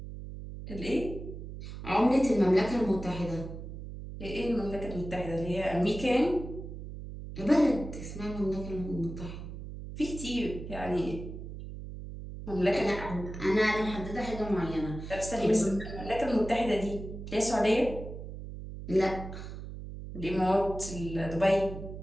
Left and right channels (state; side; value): noise; right; hum, 10 dB below the sound